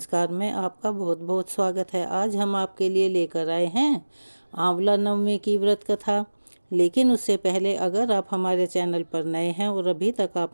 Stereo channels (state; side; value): inverted; both; correlation -1.00